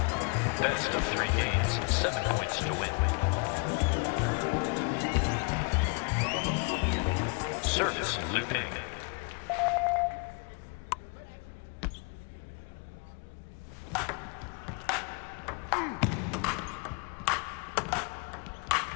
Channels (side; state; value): right; quieter; 32.6 dB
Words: Best of 3 games, 7 points to win. Service Luping.